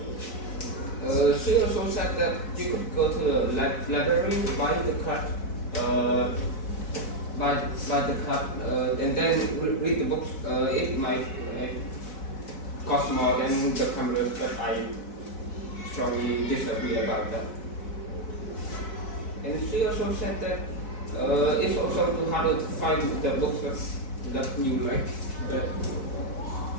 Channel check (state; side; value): late; right; 4.6 ms